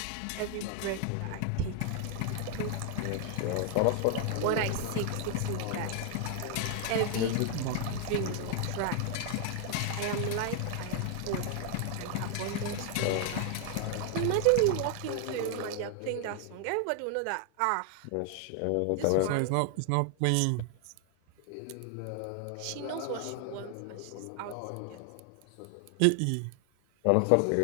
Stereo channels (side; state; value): both; different; correlation 0.00